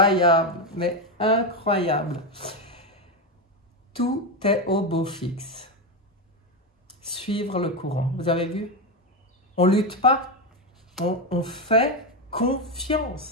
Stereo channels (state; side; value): normal; both; correlation 0.10